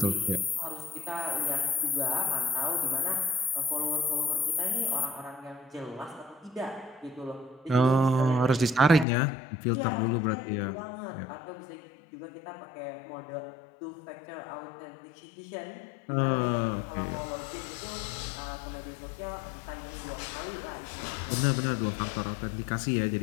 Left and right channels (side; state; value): right; drops out; at 9.1 s